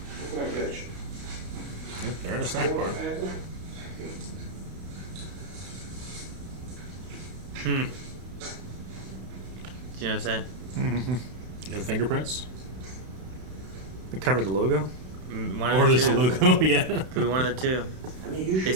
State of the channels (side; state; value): left; late; 32 ms